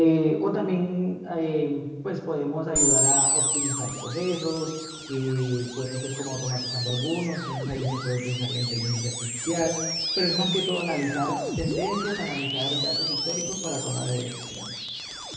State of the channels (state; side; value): identical; both; correlation 1.00